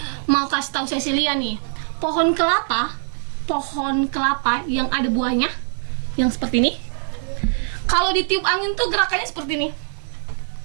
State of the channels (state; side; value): silent; left; digital silence